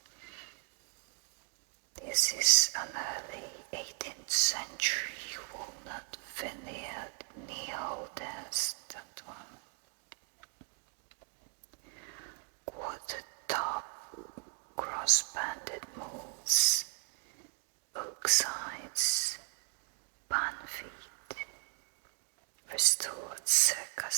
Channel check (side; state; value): left; quieter; 38.9 dB